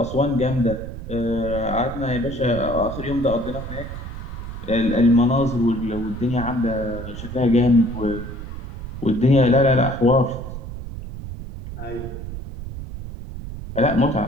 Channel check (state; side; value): noise; right; rumble, 9 dB below the sound